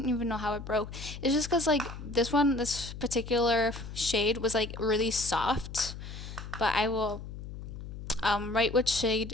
even know how it broke. It's just because, like, this particular shade was, like, really soft. But I will write which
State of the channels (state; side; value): noise; left; hum, 10 dB below the sound